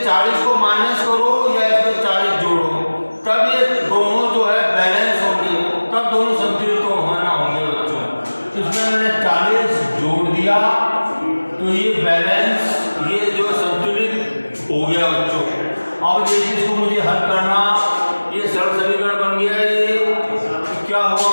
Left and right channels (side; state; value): both; inverted; correlation -1.00